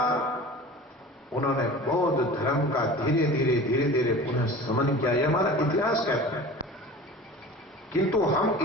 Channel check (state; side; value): normal; both; correlation 0.38